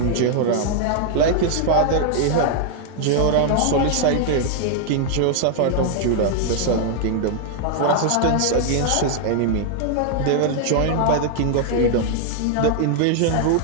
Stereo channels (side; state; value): both; different; correlation 0.00